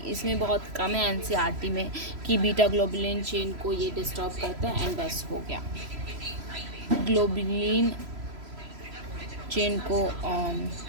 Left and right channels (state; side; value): late; left; 3.0 ms